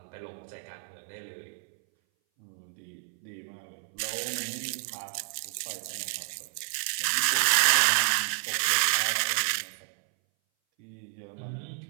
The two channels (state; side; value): silent; left; 58 dB below the other